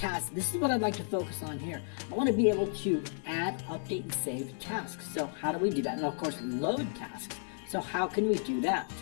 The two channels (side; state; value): right; silent; 56 dB below the other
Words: this is what I'd like to focus on here. I want to be able to add, update, and save tasks. So how do we do that? And of course, load tasks. So how can we do that?